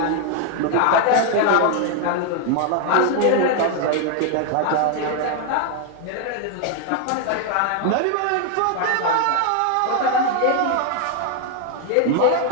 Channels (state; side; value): different; both; correlation 0.00